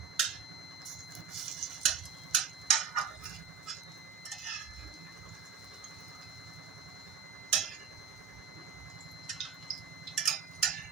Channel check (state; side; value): quieter; left; 6.9 dB